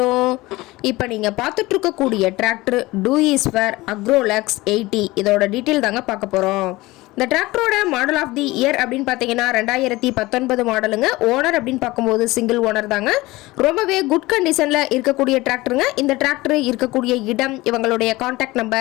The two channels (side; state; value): right; quieter; 20.1 dB